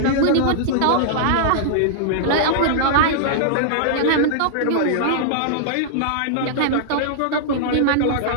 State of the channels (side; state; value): both; different; correlation -0.02